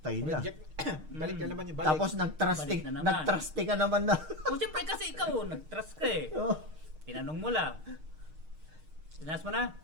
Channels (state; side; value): late; left; 6.5 ms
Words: na. Project. Balik na naman yung balik. Tapos nag-trusty, Balik na naman. nag-trusty ka naman na. O siyempre kasi ikaw, nag-trust ka eh. Oh, Tinanong mo lang. Tinaas mo na?